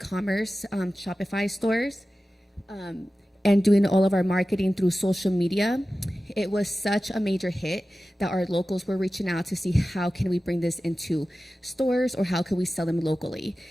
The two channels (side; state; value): both; normal; correlation 0.95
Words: Shopify stores, and doing all of our marketing through social media. It was such a major hit that our locals were reaching out to see how can we bring this into stores or how can we sell them locally.